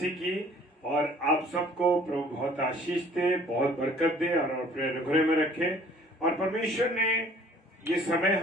की। और आप सबको प्रभु बहुत आशीष दे, बहुत बरकत दे और अपने अनुग्रह में रखे। और परमेश्वर ने ये समय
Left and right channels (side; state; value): both; normal; correlation 0.54